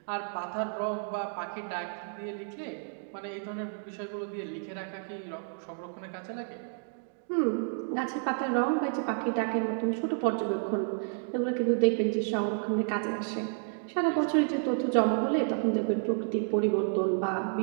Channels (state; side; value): silent; left; 56 dB below the other